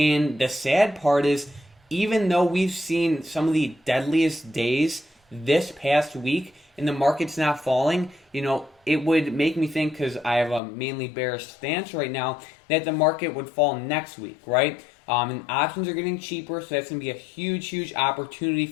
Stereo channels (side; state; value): right; drops out; at 10.6 s